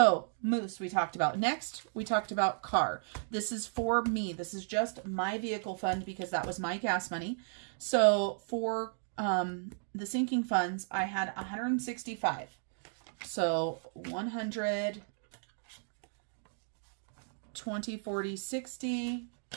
moose we talked about. Next, we talked about car. This is for me. This is just my vehicle fund because that was my gas money. So for the sinking funds, I had 165. So 100, 20, 40, 60,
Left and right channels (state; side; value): silent; left; digital silence